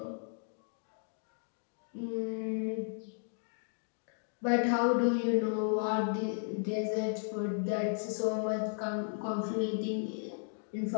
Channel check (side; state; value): right; silent; digital silence